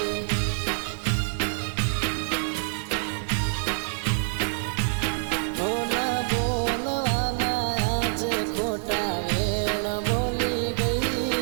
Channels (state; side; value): silent; left; 61 dB below the other